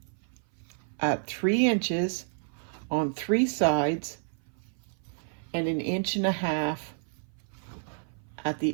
at 3 inches on 3 sides and 1.5 inches at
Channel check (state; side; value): silent; left; 56 dB below the other